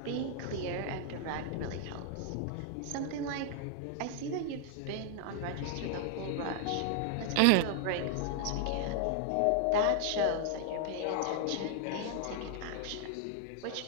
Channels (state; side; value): different; both; correlation 0.00